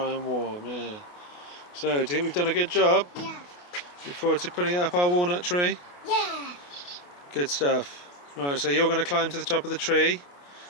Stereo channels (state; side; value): late; right; 28 ms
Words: and warm, yeah. So, do you think we've done a good job? Yeah. Look forward to putting it up our walnut tree? Yeah. Good stuff. Right, so you're going to climb to the top of the tree